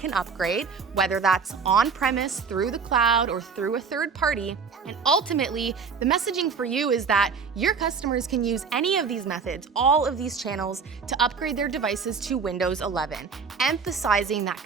upgrade, whether that's on-premise, through the cloud, or through a third party. And ultimately, the messaging for you is that your customers can use any of these methods, all of these channels, to upgrade their devices to Windows 11, emphasizing that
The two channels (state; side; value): quieter; left; 5.6 dB